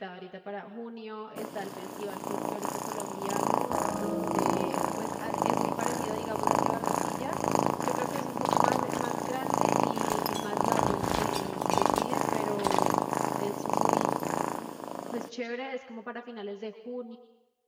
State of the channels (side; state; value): both; identical; correlation 1.00